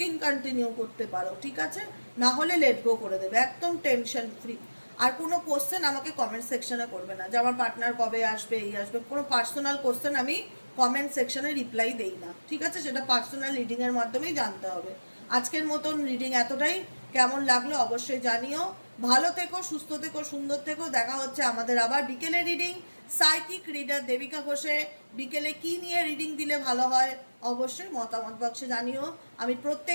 কন্টিনিউ করতে পারো, ঠিক আছে? না হলে লেট গো করে দেবে, একদম টেনশন ফ্রি। আর কোনো কোশ্চেন আমাকে কমেন্ট সেকশনে করবে না যে আমার পার্টনার কবে আসবে, এই আসবে। কোনো পার্সোনাল কোশ্চেন আমি কমেন্ট সেকশনে রিপ্লাই দেই না, ঠিক আছে? সেটা পার্সোনাল রিডিংয়ের মাধ্যমেই জানতে হবে। আজকের মতন রিডিং এতটাই। কেমন লাগলো অবশ্যই জানিও। ভালো থেকো, সুস্থ থেকো, সুন্দর থেকো। দেখা হচ্ছে আমাদের আবার বিকেলে রিডিং। সাইকিক রিডার দেবিকা ঘোষে। বিকেলে কি নিয়ে রিডিং দিলে ভালো হয় অবশ্যই মতামত বক্সে জানিও। আমি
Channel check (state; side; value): inverted; both; correlation -1.00